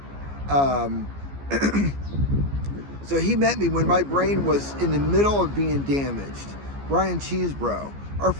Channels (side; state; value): left; late; 14 ms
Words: Um, so he met me when my brain was in the middle of being damaged. Brian Cheesebro. Our